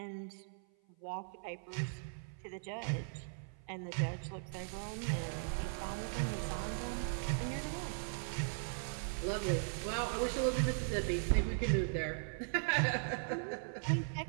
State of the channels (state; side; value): silent; left; 52 dB below the other